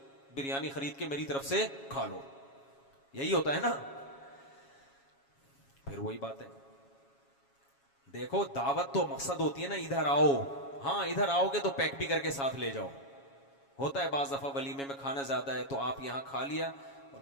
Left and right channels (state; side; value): late; right; 7.3 ms